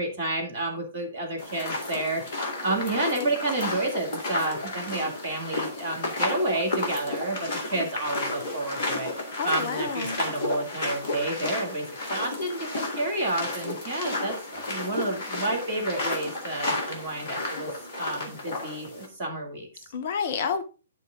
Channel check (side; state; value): both; inverted; correlation -0.51